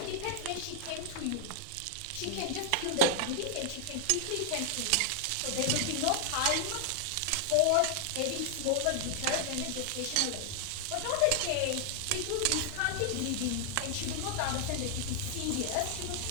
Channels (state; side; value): different; both; correlation 0.00